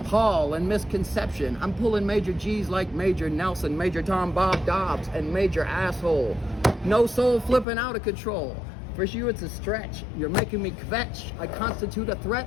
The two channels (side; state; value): right; drops out; at 7.7 s